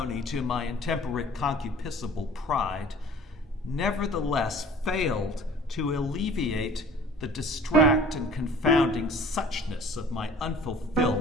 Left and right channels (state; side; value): normal; both; correlation 0.48